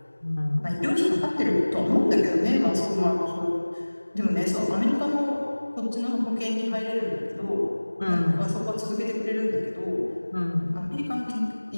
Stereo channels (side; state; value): both; inverted; correlation -1.00